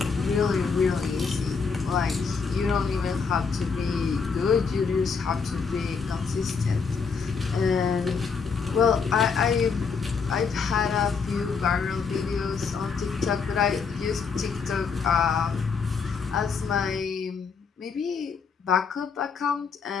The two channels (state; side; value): quieter; right; 5.5 dB